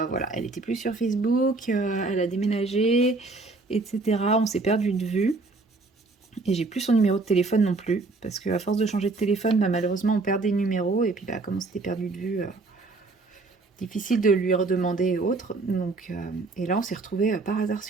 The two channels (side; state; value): left; quieter; 3.5 dB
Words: voilà, elle était plus sur Facebook, elle a déménagé, etc. On s'est perdu de vue. Et j'ai plus son numéro de téléphone non plus. Parce qu'à force de changer de téléphone, bah, malheureusement on perd des numéros. Et puis bah, comme on s'était perdu de vue, difficile de lui redemander et autres. Donc, et là on s'est retrouvés par hasard